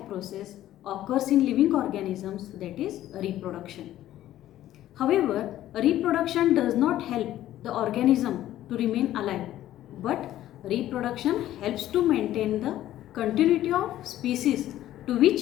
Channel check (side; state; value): right; quieter; 13.4 dB